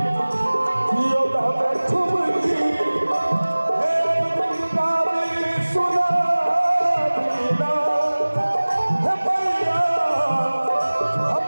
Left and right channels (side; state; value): both; inverted; correlation -1.00